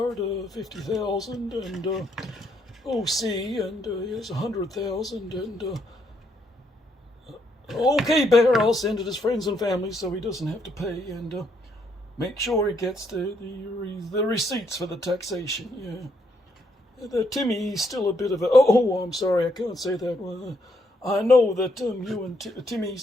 50,000, and OC, and here's 100,000, and okay, Bear, I'll send it his friends and family so he doesn't have to pay, and make sure he gets the receipts for the taxation. Yeah, Timmy's still a bit of a. Oh, I'm sorry, I can't say that. I know that you and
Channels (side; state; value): both; normal; correlation 0.74